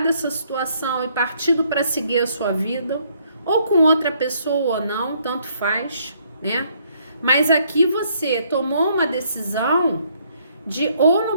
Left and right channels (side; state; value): both; inverted; correlation -0.68